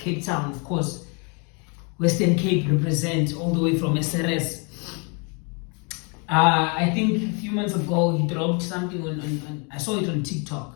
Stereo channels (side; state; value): right; quieter; 34.7 dB